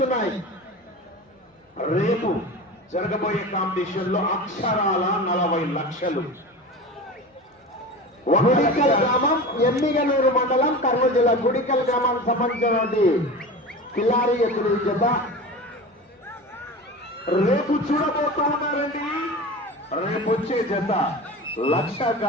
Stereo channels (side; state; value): both; normal; correlation 0.31